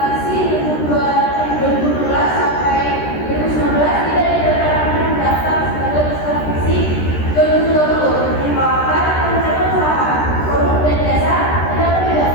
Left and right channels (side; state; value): right; late; 13 ms